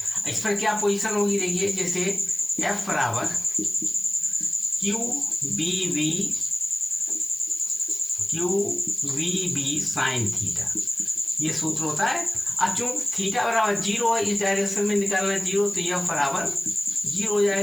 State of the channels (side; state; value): left; noise; hiss, 18 dB below the sound